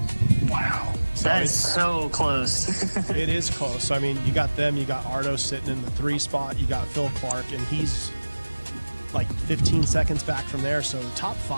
Wow. So That is so close. it is close. I mean, you got them, you got Ardo sitting in the 3 spot, you got Phil Clark, and he's like 15 seconds back from there. So the top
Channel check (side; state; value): both; inverted; correlation -1.00